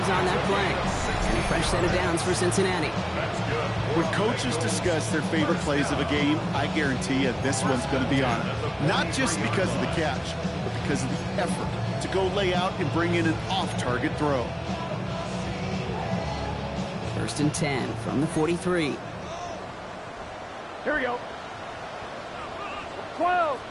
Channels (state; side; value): identical; both; correlation 1.00